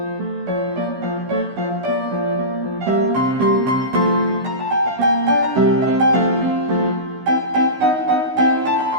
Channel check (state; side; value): late; left; 16 ms